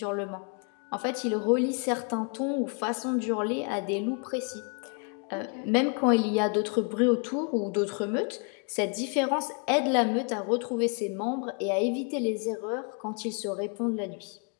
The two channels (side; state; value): right; quieter; 38.2 dB